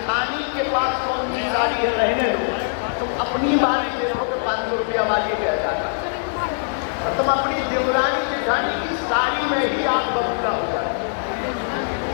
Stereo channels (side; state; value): right; silent; 64 dB below the other